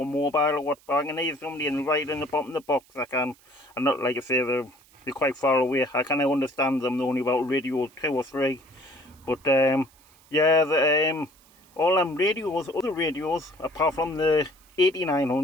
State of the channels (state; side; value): noise; right; hiss, 29 dB below the sound